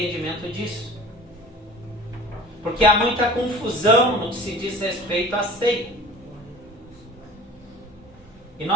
disso. Porque há muita confusão no que se diz respeito à ceia. E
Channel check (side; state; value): both; normal; correlation 0.42